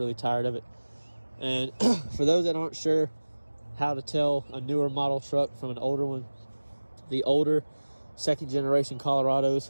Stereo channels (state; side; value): inverted; both; correlation -1.00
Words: tired of it. And for those that aren't sure how to tell a newer model truck from an older one, the older second generation Colorados,